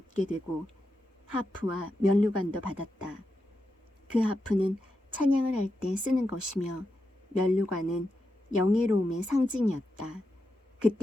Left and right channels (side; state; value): both; normal; correlation 0.87